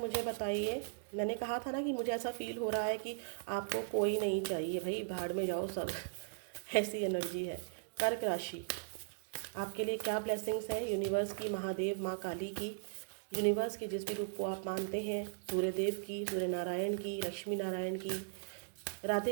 मुझे बताइए, मैंने कहा था ना कि मुझे ऐसा फील हो रहा है कि आपको कोई नहीं चाहिए, भाई भाड़ में जाओ सब ऐसी एनर्जी है। कर्क राशि, आपके लिए क्या ब्लेसिंग्स हैं यूनिवर्स की, महादेव, माँ काली की, यूनिवर्स के जिस भी रूप को आप मानते हैं, सूर्यदेव की, सूर्य नारायण की, लक्ष्मी नारायण की,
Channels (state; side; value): silent; left; digital silence